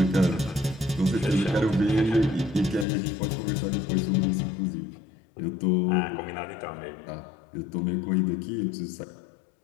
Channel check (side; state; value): right; drops out; at 2.9 s